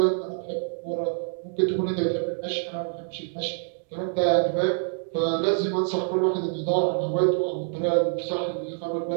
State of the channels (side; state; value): left; silent; digital silence